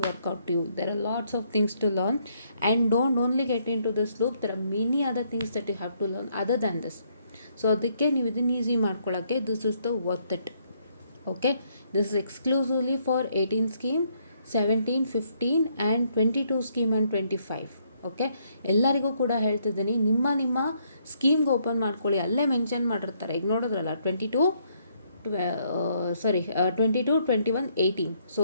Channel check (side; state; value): both; inverted; correlation -0.71